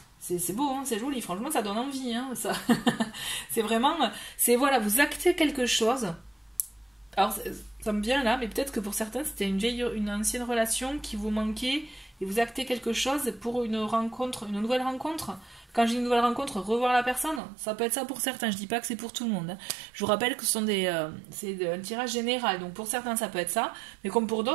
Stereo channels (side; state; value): left; drops out; at 17.4 s